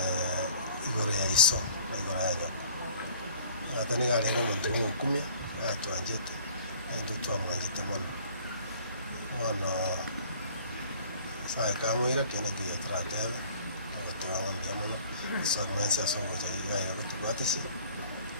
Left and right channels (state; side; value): inverted; both; correlation -0.53